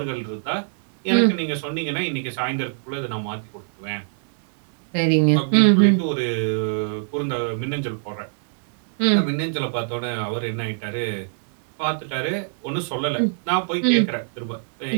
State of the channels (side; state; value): left; silent; digital silence